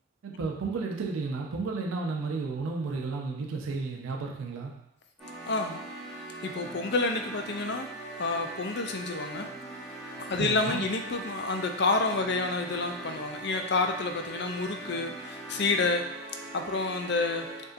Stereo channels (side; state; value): both; normal; correlation 0.10